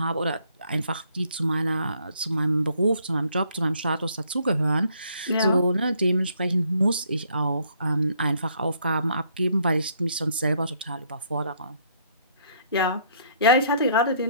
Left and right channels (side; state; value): both; inverted; correlation -0.66